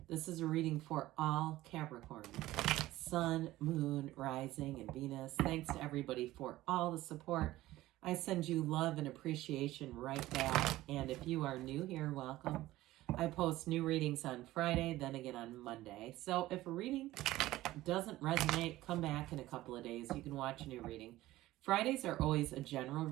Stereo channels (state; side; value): quieter; left; 16.4 dB